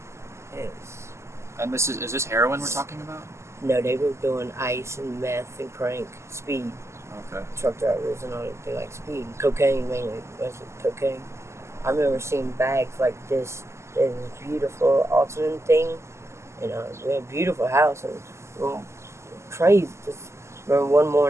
it's, And is this heroin we're talking about? no, they were doing ice and meth and crank, speed. Okay. Truck drivers and all that. They like speed, cocaine mainly. Mostly cocaine. I remember seeing bags like this. There's this beautiful alternate thing, and we had a beautiful house and crazy. Just remember one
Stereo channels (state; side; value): late; left; 0.13 ms